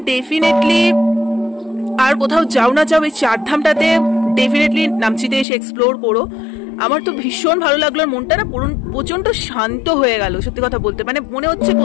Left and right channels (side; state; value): right; drops out; at 5.5 s